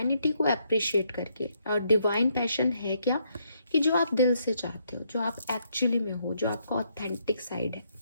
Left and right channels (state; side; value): inverted; both; correlation -0.74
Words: को अप्रिशिएट करके। और डिवाइन पैशन है क्या कि जो आप दिल से चाहते हो, जो आप एक्चुअली में हो, जो आपका ऑथेंटिक साइड है।